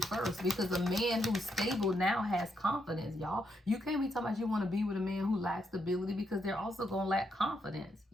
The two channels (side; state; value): both; normal; correlation 0.79